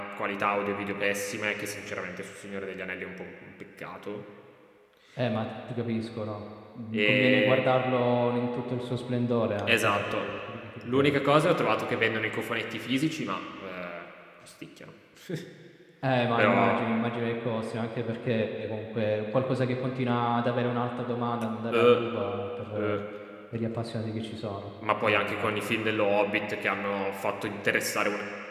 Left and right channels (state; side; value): identical; both; correlation 1.00